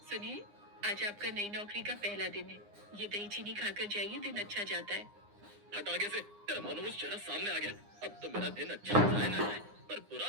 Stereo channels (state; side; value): late; left; 9.8 ms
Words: सुनिए, आज आपका नई नौकरी का पहला दिन है। ये दही चीनी खाकर जाइए, दिन अच्छा जाता है। हट आगे से, तेरा मनोज चेहरा सामने आ गया। अब तो मेरा दिन अच्छा जाए ना जाए, पर